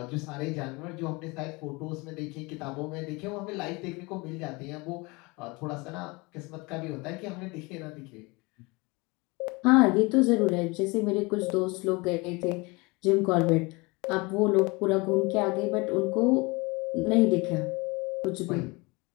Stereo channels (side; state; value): right; quieter; 25.8 dB